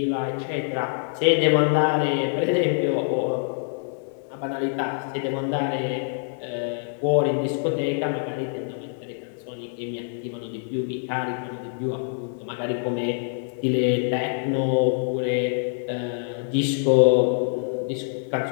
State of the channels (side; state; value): right; silent; 58 dB below the other